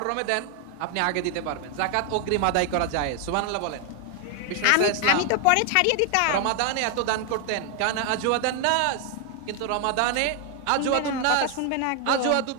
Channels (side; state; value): both; different; correlation 0.00